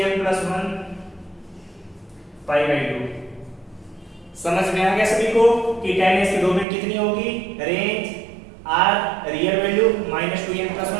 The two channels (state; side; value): drops out; left; at 6.7 s